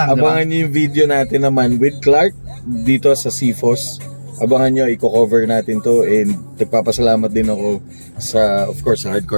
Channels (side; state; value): both; inverted; correlation -1.00